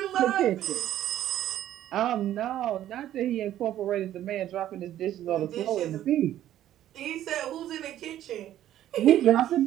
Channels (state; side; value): quieter; left; 12.3 dB